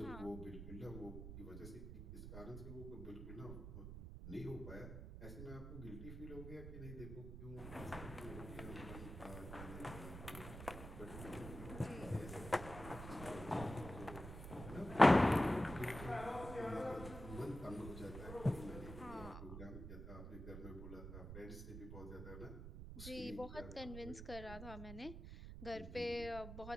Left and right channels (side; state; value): right; noise; rumble, 9 dB below the sound